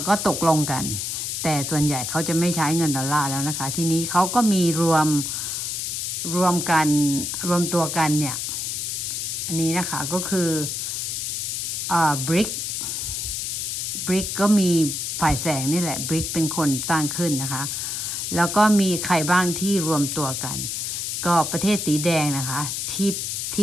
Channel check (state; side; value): noise; left; hiss, 3 dB below the sound